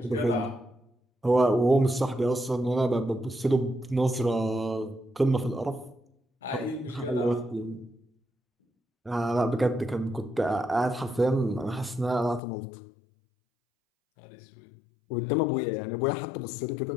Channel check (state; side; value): drops out; right; at 12.4 s